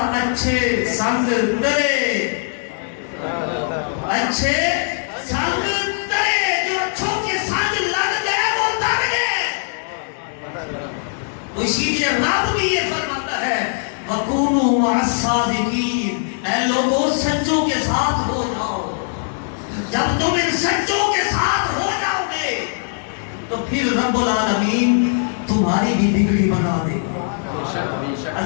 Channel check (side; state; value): right; silent; digital silence